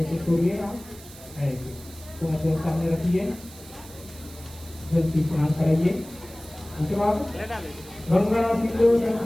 के छोड़िएगा ऐसे तो अपने सामने रखिए जल्दी स्नान कराइए। उसके बाद गंगा सिंधु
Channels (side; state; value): right; noise; hiss, 19 dB below the sound